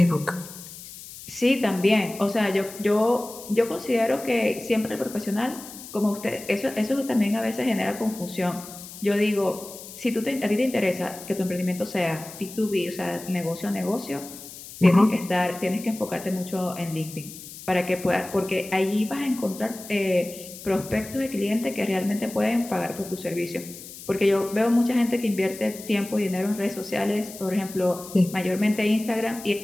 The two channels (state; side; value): noise; left; hiss, 14 dB below the sound